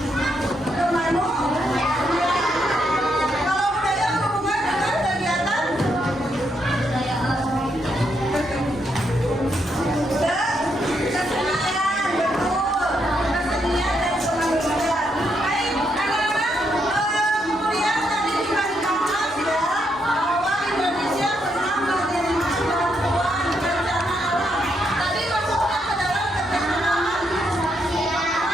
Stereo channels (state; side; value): normal; both; correlation 0.78